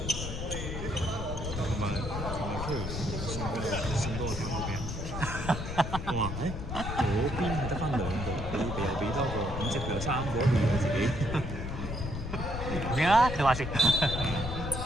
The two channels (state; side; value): noise; left; rumble, 5 dB below the sound